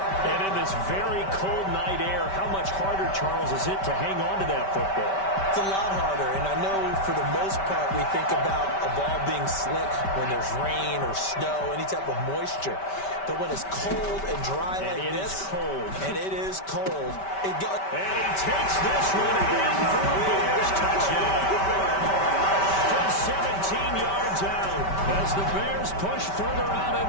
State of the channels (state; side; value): late; right; 5.2 ms